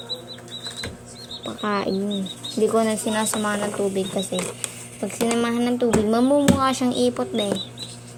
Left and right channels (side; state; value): both; identical; correlation 1.00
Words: Pagkain. Hindi ko na sinasamahan ng tubig kasi pag sinamahan ng tubig, mamumukha siyang ipot ba eh.